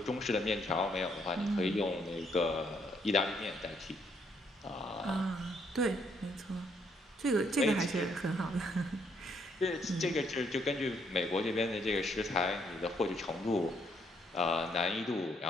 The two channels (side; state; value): both; normal; correlation 0.71